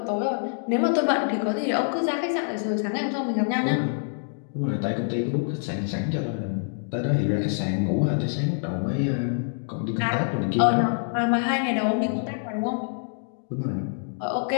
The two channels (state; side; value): silent; right; digital silence